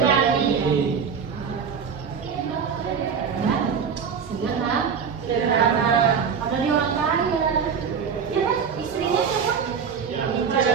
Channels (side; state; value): left; quieter; 6.5 dB